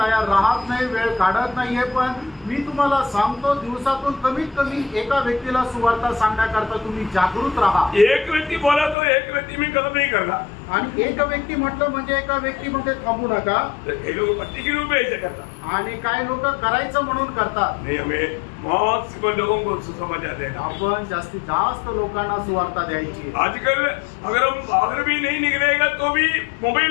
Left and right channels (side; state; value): right; drops out; at 9.0 s